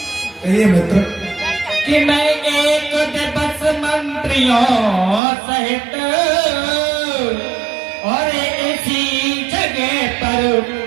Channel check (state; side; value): drops out; left; at 5.2 s